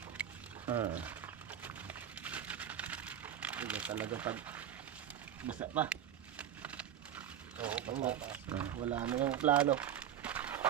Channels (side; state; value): left; quieter; 10.1 dB